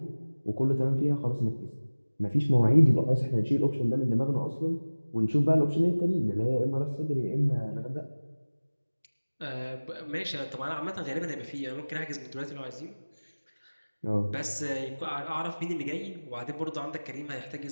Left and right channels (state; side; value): inverted; both; correlation -1.00